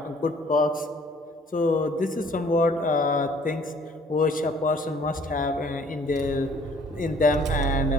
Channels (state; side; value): normal; both; correlation 0.57